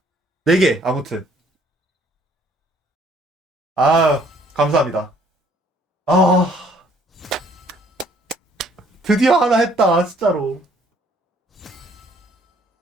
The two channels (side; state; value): both; normal; correlation 0.62